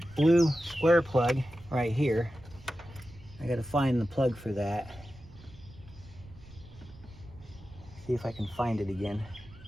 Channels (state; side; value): noise; right; rumble, 21 dB below the sound